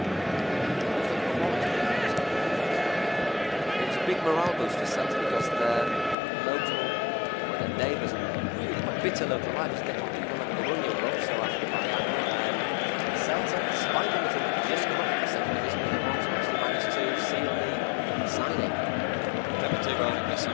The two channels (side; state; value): right; drops out; at 6.2 s